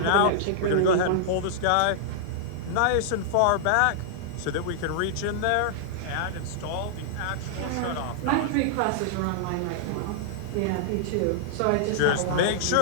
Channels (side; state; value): both; different; correlation -0.01